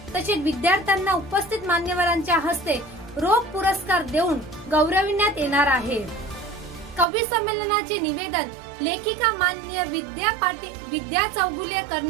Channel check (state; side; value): drops out; left; at 7.1 s